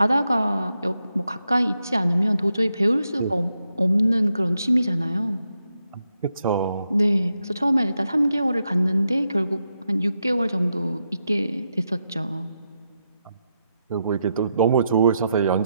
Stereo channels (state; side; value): inverted; both; correlation -0.84